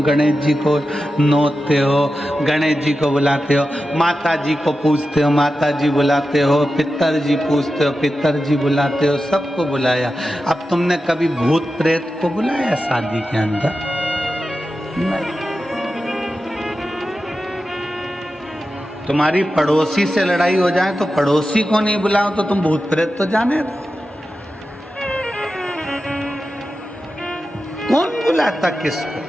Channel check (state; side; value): normal; both; correlation 0.92